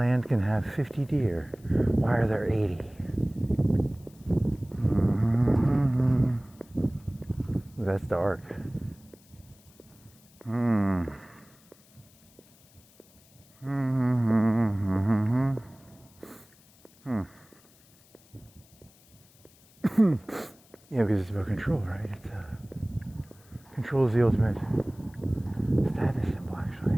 can have 50 deer. Why are there 80? Ooh, that's dark. Yeah, because it's about control, right? It's control is the ultimate status symbol,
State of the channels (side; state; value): left; noise; hiss, 28 dB below the sound